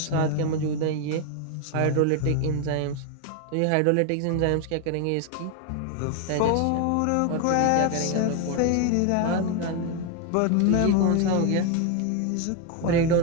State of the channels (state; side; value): different; both; correlation 0.01